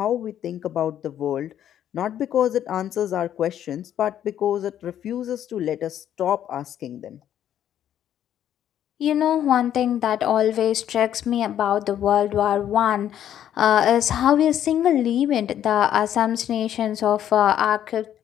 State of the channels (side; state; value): right; quieter; 10.6 dB